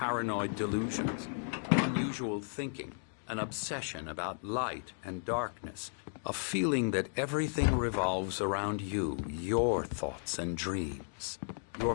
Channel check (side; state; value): right; silent; digital silence